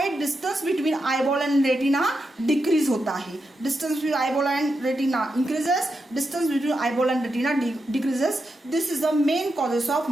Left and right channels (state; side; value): normal; both; correlation 0.86